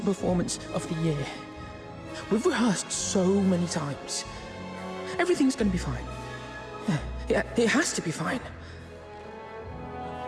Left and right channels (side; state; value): both; identical; correlation 1.00